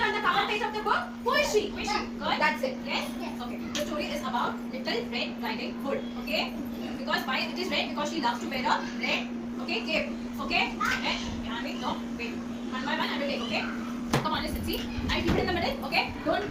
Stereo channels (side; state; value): both; identical; correlation 1.00